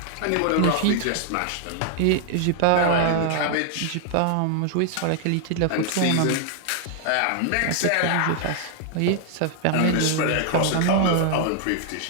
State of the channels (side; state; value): both; different; correlation -0.01